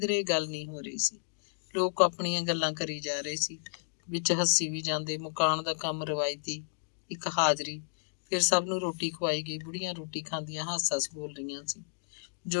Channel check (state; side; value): silent; right; digital silence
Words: ਗੱਲ ਨਹੀਂ ਹੋ ਰਹੀ ਸੀ। ਲੋਕ ਆਪਣੀਆਂ ਗੱਲਾਂ ਕਰੀ ਜਾ ਰਹੇ ਸੀ, ਵਿੱਚ ਹੱਸੀ ਵੀ ਜਾਂਦੇ। ਮਕਾਨ ਦਾ ਕੰਮ ਰਵਾਇਤੀ, ਇੱਕ ਹਾਜ਼ਰੀ। ਫਿਰ ਸਭ ਨੂੰ ਰੋਟੀ ਖਵਾਈ ਗਈ। ਬੁੜੀਆਂ ਰੋਟੀ ਖਾਂਦੀਆਂ ਹੱਸ-ਹੱਸ ਬੋਲ ਰਹੀਆਂ ਸੀ।